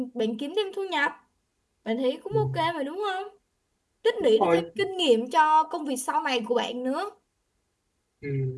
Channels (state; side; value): identical; both; correlation 1.00